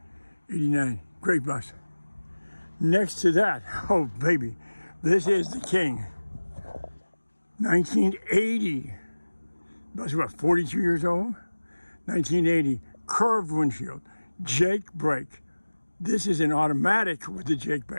89. Great bus. Next to that, oh baby, this is the king. 1980. Bus about 42 years old. 1980. Curved windshield. Jake brake. This is an automatic with the Jake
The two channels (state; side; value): inverted; both; correlation -1.00